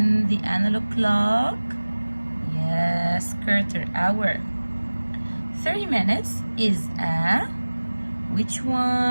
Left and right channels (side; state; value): both; inverted; correlation -1.00